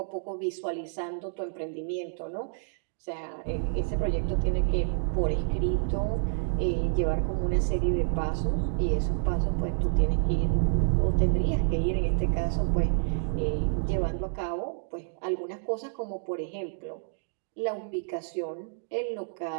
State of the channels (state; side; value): silent; left; digital silence